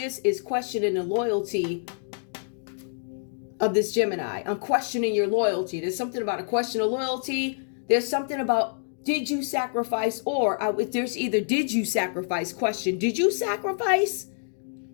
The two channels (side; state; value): right; silent; digital silence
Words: is questioning the loyalty of this Gemini. I'm questioning your loyalty. There's something about a question of loyalty. There's something about, did you sacrifice? Or there's either did you sacrifice question. Did you sacrifice?